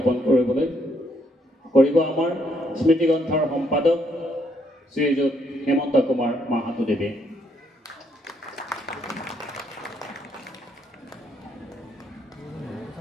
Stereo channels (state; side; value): normal; both; correlation 0.72